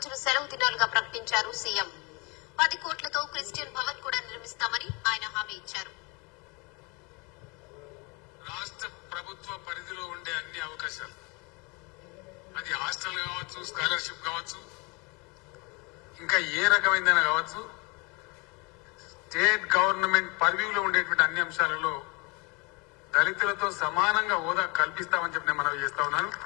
సెలవు దినాలుగా ప్రకటించారు సీఎం. 10 కోట్లతో క్రిస్టియన్ భవన్ కూడా నిర్మిస్తామని ఆయన హామీ ఇచ్చారు. రాష్ట్ర ప్రభుత్వ పరిధిలో ఉండే అన్ని అవకాశాలు, అది హాస్టల్ కావచ్చు, స్కాలర్షిప్ కావచ్చు, ఇంకా ఏ రకమైందైనా కావచ్చు, స్టేట్ గవర్నమెంట్ పర్వ్యూలో ఉండేటువంటి అన్ని అంశాలలో దళితులతో సమానంగా హోదా కల్పిస్తామని చెప్పి నేను మనవి చేస్తా ఉన్నాను.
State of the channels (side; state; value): right; quieter; 29.4 dB